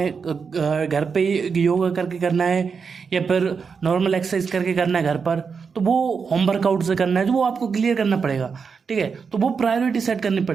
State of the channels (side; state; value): left; quieter; 5.7 dB